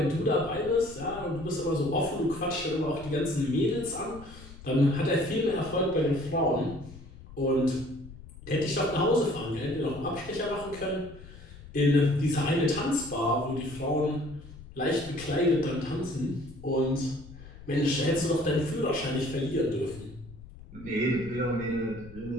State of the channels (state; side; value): noise; left; rumble, 17 dB below the sound